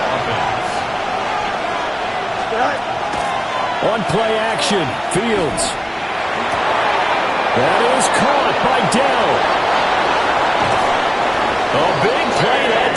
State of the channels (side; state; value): both; identical; correlation 1.00